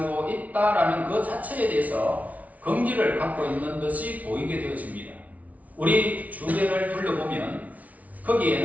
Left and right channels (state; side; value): late; left; 0.071 ms